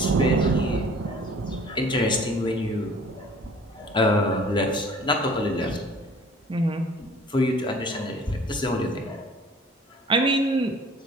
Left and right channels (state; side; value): normal; both; correlation 0.50